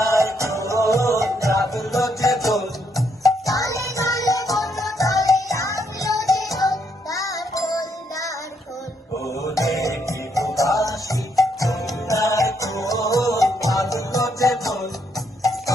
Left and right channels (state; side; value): normal; both; correlation 0.75